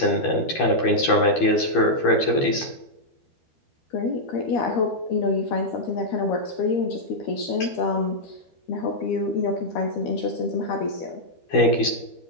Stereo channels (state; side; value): late; right; 12 ms